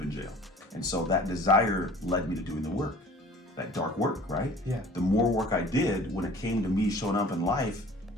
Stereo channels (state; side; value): normal; both; correlation 0.46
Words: in jail. And so that desire led me to doing the work, that dark work, right? Yeah. The more work I did, when it came to me showing up in life,